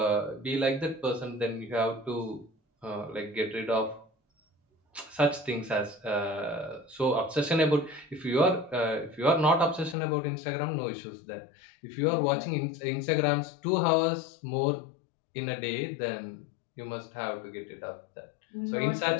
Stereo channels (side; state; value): right; drops out; at 10.0 s